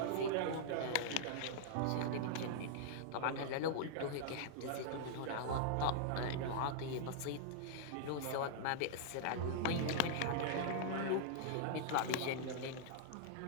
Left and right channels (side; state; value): both; different; correlation -0.01